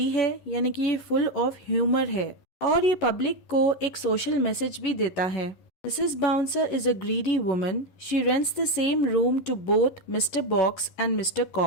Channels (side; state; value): right; late; 11 ms